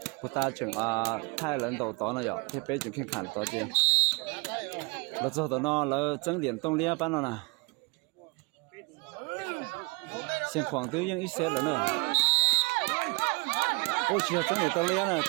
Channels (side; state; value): left; quieter; 29.3 dB